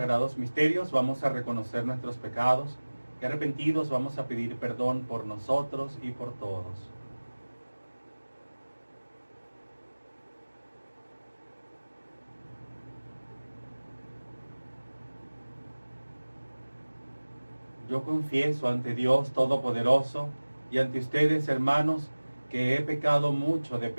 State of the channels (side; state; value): both; inverted; correlation -1.00